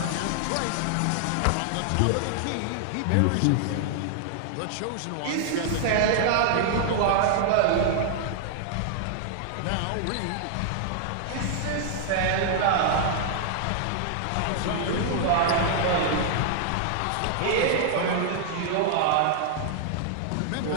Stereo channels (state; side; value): different; both; correlation -0.01